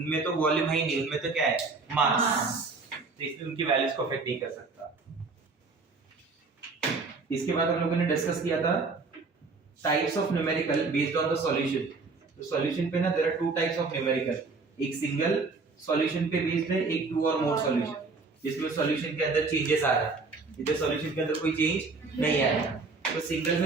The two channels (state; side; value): quieter; left; 4.1 dB